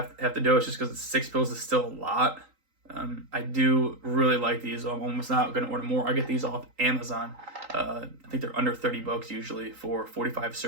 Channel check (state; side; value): late; left; 3.8 ms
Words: the dose just because 6 pills is still a lot. I do really like these. I'm almost not going to order more. I get these off Amazon. I think they're under $30 usually for 45